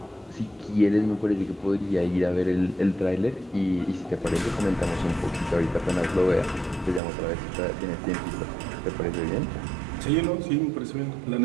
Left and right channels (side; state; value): left; drops out; at 7.0 s